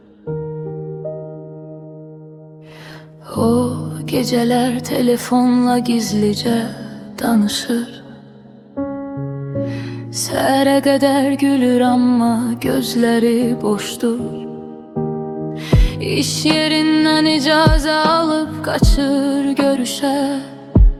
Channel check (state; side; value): identical; both; correlation 1.00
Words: O gecələr telefonla gizlicə danışır. Səhərə qədər gülür amma gözləri boşdur. İş yerindən icazə alıb qaçır görüşə.